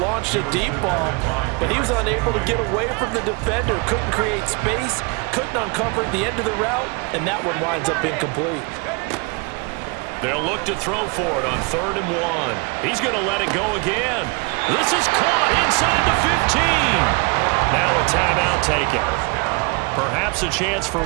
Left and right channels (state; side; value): quieter; left; 30.3 dB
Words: launched a deep ball, but he was unable to get away from the defender, couldn't create space, couldn't uncover the end of the route, and that one winds up incomplete. They'll look to throw for it on 3rd and 1. He's going to let it go again. This is caught inside the 15. Now a timeout taken. Perhaps a chance for